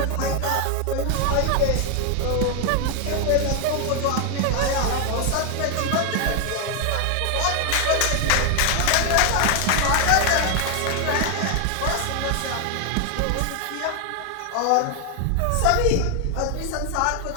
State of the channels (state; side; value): different; both; correlation 0.00